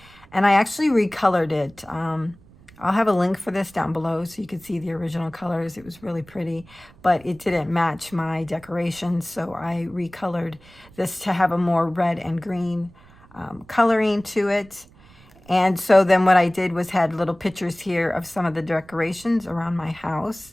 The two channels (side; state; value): right; noise; rumble, 25 dB below the sound